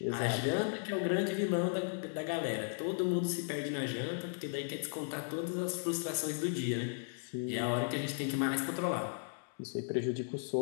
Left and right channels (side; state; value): right; silent; digital silence